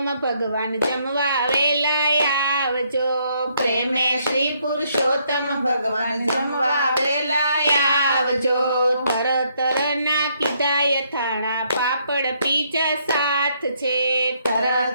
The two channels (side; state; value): both; inverted; correlation -0.71